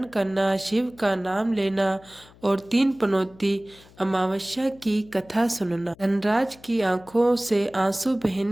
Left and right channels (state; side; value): noise; left; hum, 25 dB below the sound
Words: करना, शिव का नाम लेना और 3 पनौती अमावस्या की कथा सुनना। धनराज की आंखों से आंसू